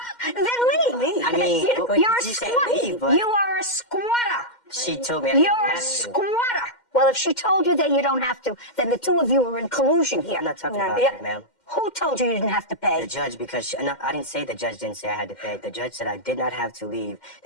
Then leave. I mean, you're a you said squatter. leave, but You are a squatter. she told me I didn't You're a have to. squatter. Well, if she told you that you don't have to, then the two of you are in collusion here. I'm not talking about Yeah. that, ma'am. Who told you you didn't have to pay? The judge, because no, I didn't say the judge didn't say I had to pay. The judge said I did not have to leave,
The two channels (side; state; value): right; late; 2.1 ms